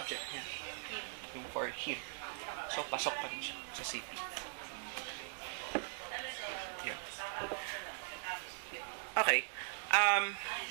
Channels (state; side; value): silent; left; digital silence